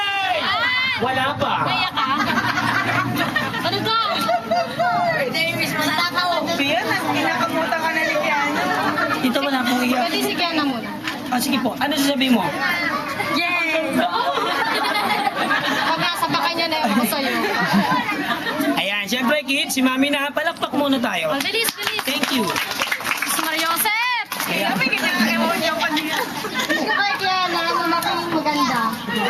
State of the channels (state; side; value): identical; both; correlation 1.00